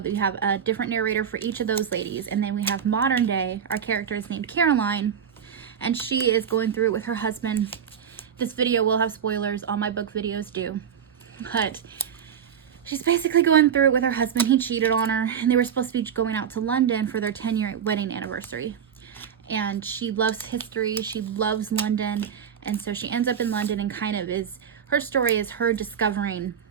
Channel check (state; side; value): quieter; left; 8.0 dB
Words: have a different narrator for each of those ladies. And then we have modern day, our character is named Caroline, and she is going through it with her husband. This video will have spoilers, all my book videos do, but she's basically going through it with her husband. He cheated on her, and they were supposed to be going out to London for their 10-year wedding anniversary. And she loves history, she loves London, and so she ends up in London, and kind of is, her story is her discovering